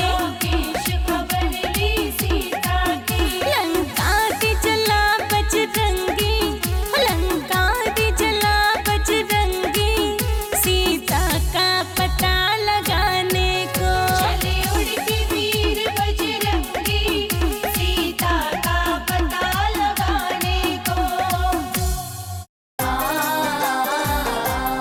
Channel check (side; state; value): both; identical; correlation 1.00